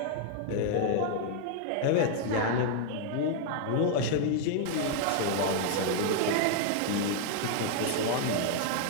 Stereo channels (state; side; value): different; both; correlation 0.00